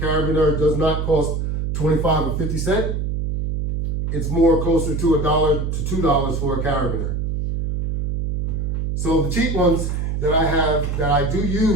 does not cost 25 or 50 cents. It's more closer to $1 to $2 for a carabiner. So the cheap ones that I have, that I do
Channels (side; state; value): right; noise; hum, 1 dB below the sound